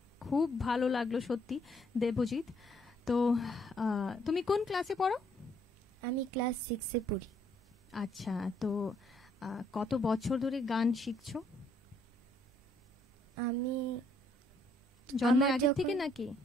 খুব ভালো লাগলো সত্যি দেবজিৎ। তো তুমি কোন ক্লাসে পড়ো? আমি ক্লাস 6 এ পড়ি। আচ্ছা, তো কত বছর ধরে গান শিখছো? আমি জন্মের আগে থেকে নাকি?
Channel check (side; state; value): both; normal; correlation 0.68